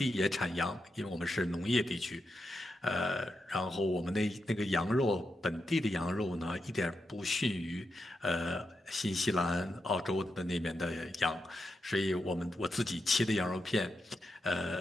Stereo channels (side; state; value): both; normal; correlation 0.86